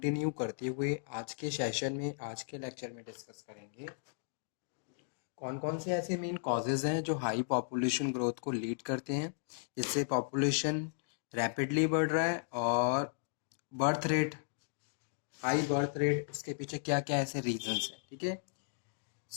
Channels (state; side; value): silent; right; digital silence